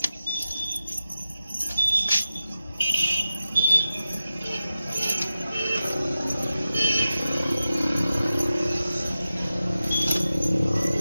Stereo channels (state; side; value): inverted; both; correlation -0.93